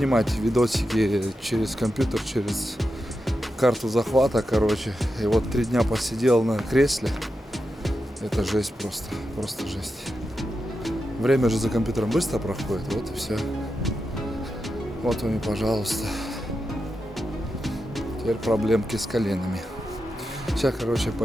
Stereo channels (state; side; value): normal; both; correlation 0.89